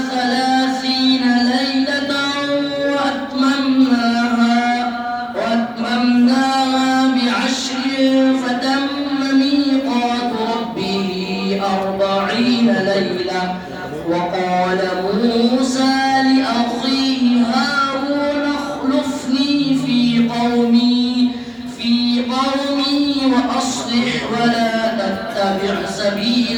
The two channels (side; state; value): both; identical; correlation 1.00